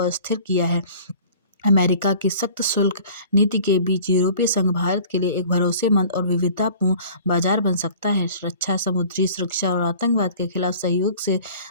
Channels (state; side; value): inverted; both; correlation -0.47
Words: अस्थिर किया है। अमेरिका की सख्त शुल्क नीति के बीच यूरोपीय संघ भारत के लिए एक भरोसेमंद और विविधतापूर्ण बाजार बन सकता है। रक्षा, समुद्री सुरक्षा और आतंकवाद के खिलाफ सहयोग से